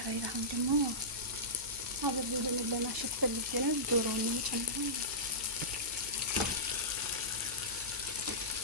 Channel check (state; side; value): noise; right; hum, 17 dB below the sound